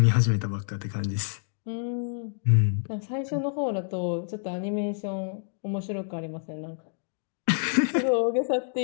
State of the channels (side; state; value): right; silent; digital silence